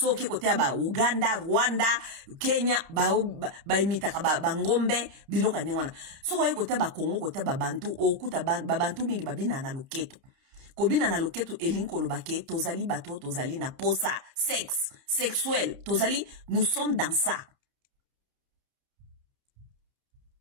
ke kotea ba Uganda, Rwanda, Kenya, ba imita ka ba ngombe, biloka ningwana. So ko kotea ba Congo, kotea ba Bantu, okuta ba Bantu mingi babina na luketu. Kobina na loketu elinkolo bake, tozali bato, tozali na posa, sexe, sexuel, tozali, nous sommes dans ça.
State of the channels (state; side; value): late; left; 29 ms